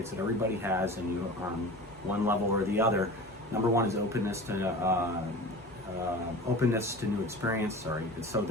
that everybody has, and you on one level or the other. Number one is openness to new experience. So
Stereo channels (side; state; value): both; normal; correlation 0.36